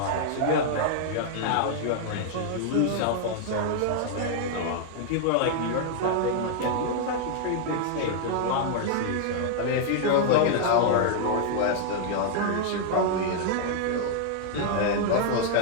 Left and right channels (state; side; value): different; both; correlation -0.01